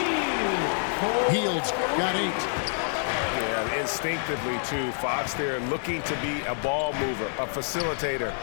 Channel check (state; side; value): silent; right; digital silence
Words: Heald's got 8. Yeah, instinctively, too. Fox there looking to be a ball mover, a facilitator.